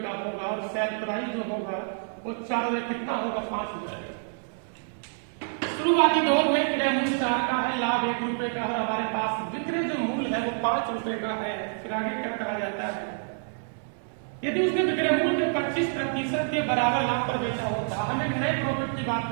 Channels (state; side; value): silent; left; digital silence